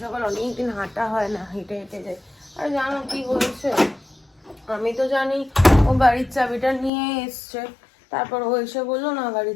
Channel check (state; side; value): drops out; right; at 6.9 s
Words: সকাল অনেকদিন হাঁটা হয় না, হেঁটে হেঁটে যায়। আর জানো কি হয়েছে, আমি তো জানি ও গাড়ির চাবিটা নিয়ে এসছে, তারপর ও এসে বললো না